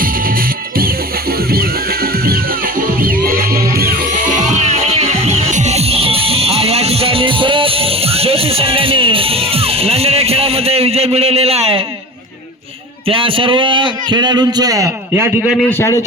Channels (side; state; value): both; normal; correlation 0.35